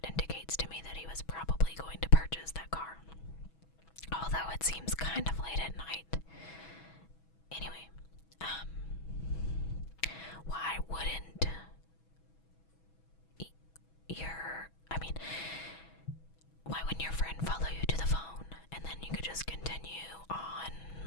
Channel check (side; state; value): right; late; 6.1 ms